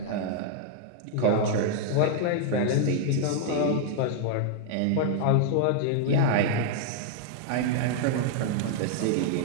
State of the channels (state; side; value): different; both; correlation -0.01